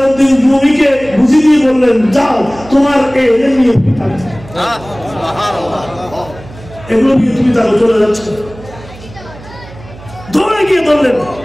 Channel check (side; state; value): right; noise; hum, 18 dB below the sound